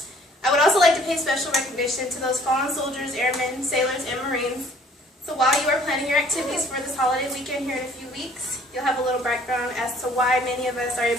I would also like to pay special recognition to those fallen soldiers, airmen, sailors, and Marines. So while you are planning your activities for this holiday weekend here in a few weeks, you'll have a little background as to why many of us are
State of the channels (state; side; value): normal; both; correlation 0.57